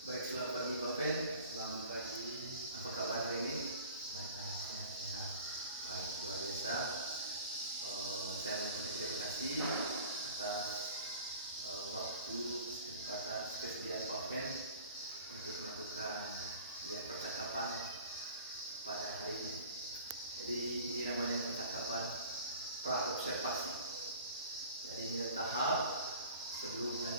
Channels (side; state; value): both; inverted; correlation -0.43